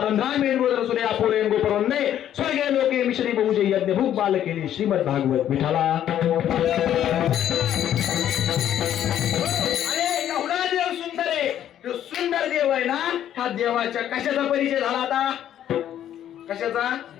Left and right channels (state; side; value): quieter; right; 10.9 dB